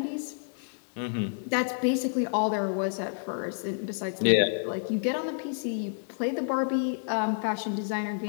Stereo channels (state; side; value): silent; right; 58 dB below the other